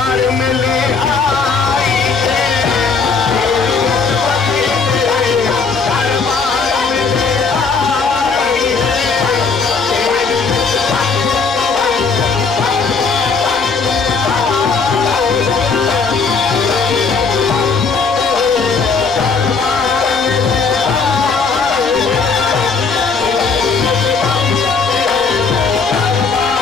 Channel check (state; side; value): quieter; right; 4.9 dB